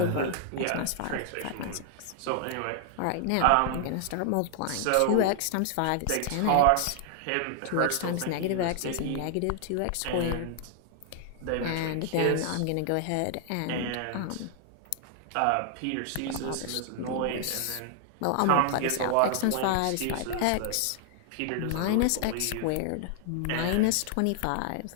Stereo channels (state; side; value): different; both; correlation -0.01